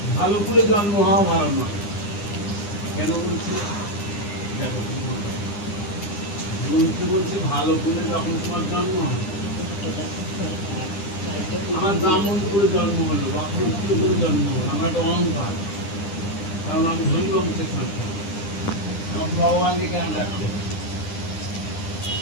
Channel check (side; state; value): right; late; 9.9 ms